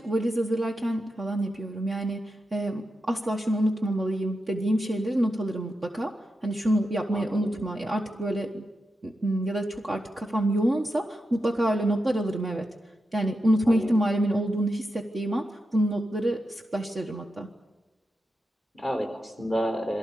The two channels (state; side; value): normal; both; correlation 0.88